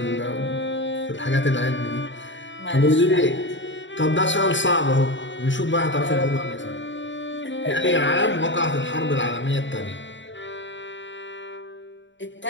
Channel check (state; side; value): late; right; 0.54 ms